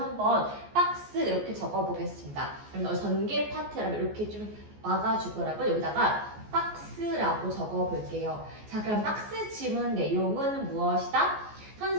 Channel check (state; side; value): late; left; 14 ms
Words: 박스 이렇게 적어보겠습니다. 그럼 전개 파트라면 이렇게 좀 막아주더라고요. 여기다가 박스라고 적어볼게요. 자, 그럼 박스 지문 내용은 무엇이다?